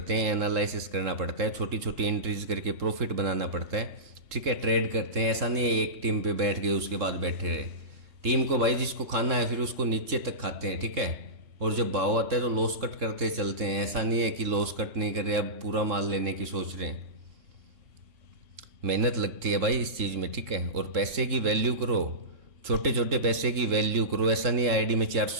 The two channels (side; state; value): left; late; 3.7 ms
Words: हैं, एनालिसिस करना पड़ता है, छोटी छोटी एंट्रीज करके प्रॉफिट बनाना पड़ता है, ठीक है। ट्रेड करते हैं, ऐसा नहीं है एक टीम पे बैठ गए उसके बाद बैठे रहे। टीम को भाई जिसको खाना है फिर उसको नीचे तक खाते हैं, ठीक है। और जब भाव आता है तो लॉस कट करते चलते हैं, ऐसा नहीं है कि लॉस कट नहीं कर रहे, अब पूरा माल लेने की सोच रहे हैं। मेहनत लगती है भाई इस चीज़ में, ठीक है। और पैसे की वैल्यू करो, छोटे छोटे पैसे की वैल्यू करो। ऐसा नहीं आईडी में